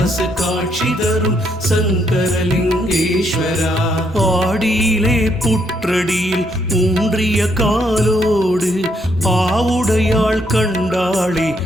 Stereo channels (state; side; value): normal; both; correlation 0.73